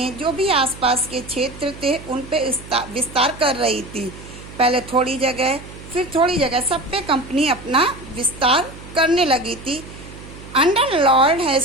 जो भी आसपास के क्षेत्र थे उन पे विस्तार कर रही थी। पहले थोड़ी जगह, फिर थोड़ी जगह, सब पे कंपनी अपना विस्तार करने लगी थी। Under Lord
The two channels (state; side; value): noise; right; hum, 16 dB below the sound